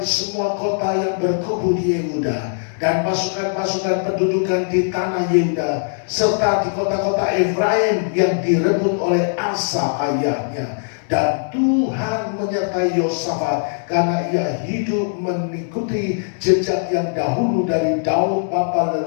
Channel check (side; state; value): right; silent; digital silence